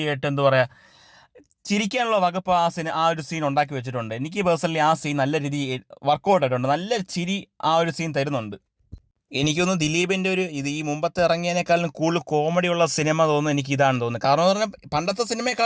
ആയിട്ട് എന്താ പറയുക, ചിരിക്കാനുള്ള വകുപ്പ് ആ ഒരു സീൻ ഉണ്ടാക്കി വെച്ചിട്ടുണ്ട്. എനിക്ക് പേഴ്സണലി ആ സീൻ നല്ല രീതിയിൽ വർക്കൗട്ട് ആയിട്ടുണ്ട്. നല്ല ചിരി ആ ഒരു സീൻ തരുന്നുണ്ട്. എനിക്കൊന്ന് ദിലീപിൻ്റെ ഈ മുമ്പത്തെ ഇറങ്ങിയതിനേക്കാളും കൂടുതൽ കോമഡിയുള്ള സിനിമ തോന്നുന്നു എനിക്ക് ഇതാണെന്ന് തോന്നുന്നു. കാരണം എന്ന് പറഞ്ഞാൽ പണ്ടത്തെ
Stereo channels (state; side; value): identical; both; correlation 1.00